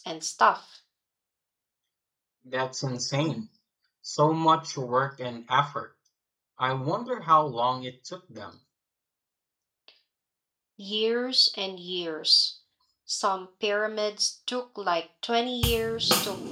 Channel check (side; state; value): both; identical; correlation 1.00